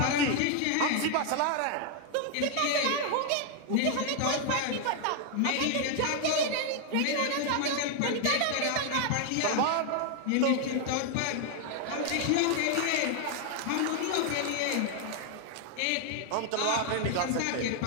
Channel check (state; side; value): different; both; correlation 0.00